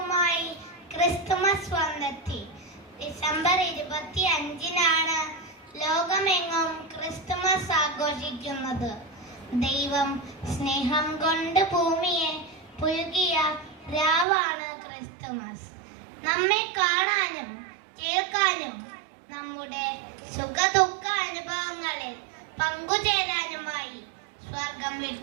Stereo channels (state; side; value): drops out; left; at 14.2 s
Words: Christmas വന്നെത്തി. December 25-നാണ് ലോകമെങ്ങും Christmas ആഘോഷിക്കുന്നത്. ദൈവം സ്നേഹം കൊണ്ട് ഭൂമിയെ പുൽകിയ രാവാണ് Christmas. നമ്മെ കാണാനും കേൾക്കാനും നമ്മുടെ സുഖദുഃഖ അനുഭവങ്ങളിൽ പങ്കുചേരാനുമായി സ്വർഗം